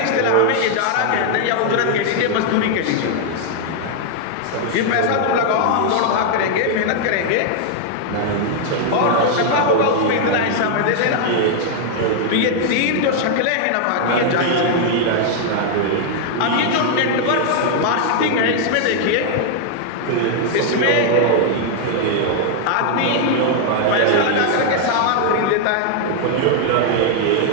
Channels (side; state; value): both; different; correlation 0.00